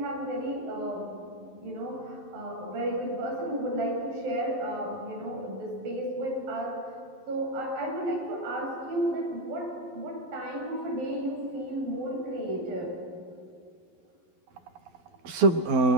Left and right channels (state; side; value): late; left; 11 ms